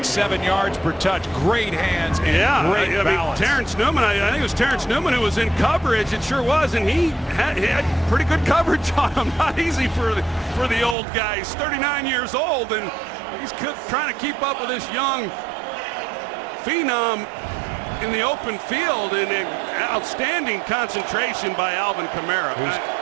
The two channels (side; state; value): left; drops out; at 11.0 s